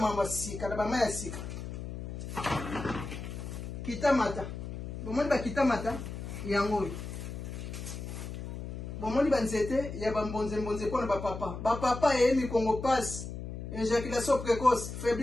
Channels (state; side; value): noise; left; hum, 8 dB below the sound